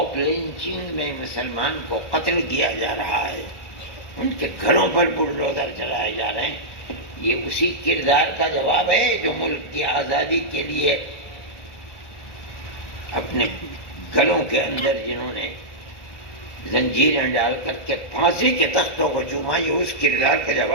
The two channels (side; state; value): right; late; 1.4 ms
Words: لنچنگ میں مسلمان کو قتل کیا جا رہا ہے، ان کے گھروں پر بلڈوزر چلائے جا رہے ہیں۔ یہ اسی کردار کا جواب ہے جو ملک کی آزادی کے لیے اپنے گلوں کے اندر جنہوں نے زنجیریں ڈال کر کے پھانسی کے تختوں کو چوما، یہ اس کردار کا